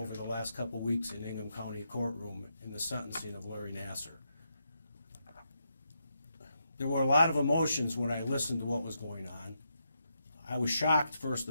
the last couple weeks in Ingham County courtroom in the sentencing of Larry Nassar. There were a lot of emotions when I listened to what was going on. I was shocked, first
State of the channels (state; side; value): inverted; both; correlation -0.82